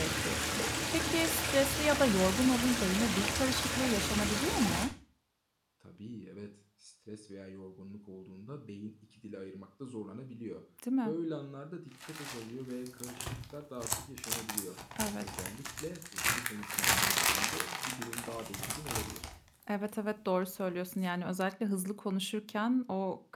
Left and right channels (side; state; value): both; identical; correlation 1.00